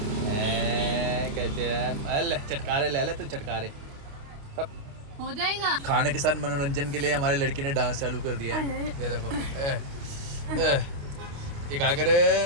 कहते हैं चटकारे ले ले तो चटकारे हो जाएगा। खाने के साथ मनोरंजन के लिए हमारे लड़की ने डांस चालू कर दिया है। ये देखो इकागर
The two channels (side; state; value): left; late; 29 ms